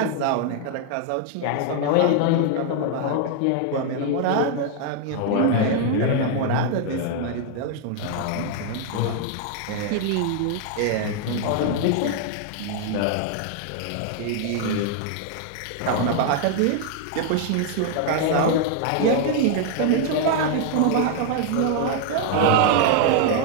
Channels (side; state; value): both; different; correlation 0.00